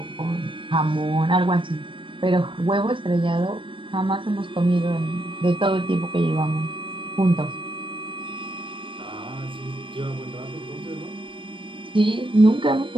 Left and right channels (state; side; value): late; left; 0.25 ms